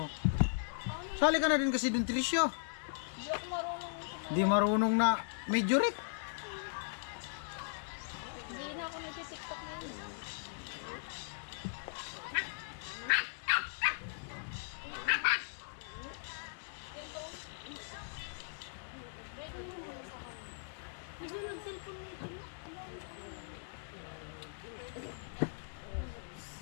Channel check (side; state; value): right; silent; digital silence